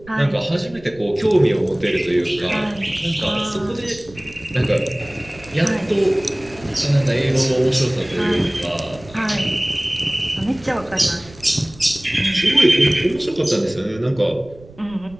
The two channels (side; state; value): right; noise; rumble, 21 dB below the sound